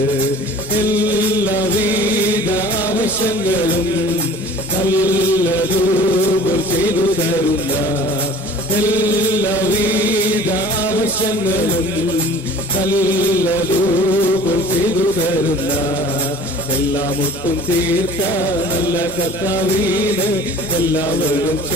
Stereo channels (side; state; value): both; normal; correlation 0.45